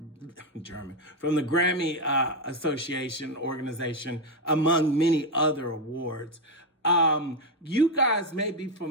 from the Grammy Association organization, among many other awards. You guys may be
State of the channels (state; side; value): normal; both; correlation 0.06